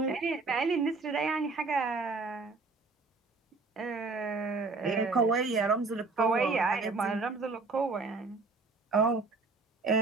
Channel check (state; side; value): quieter; left; 3.9 dB